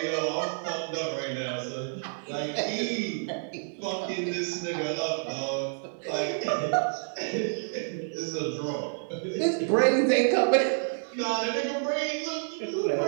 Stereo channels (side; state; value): left; silent; digital silence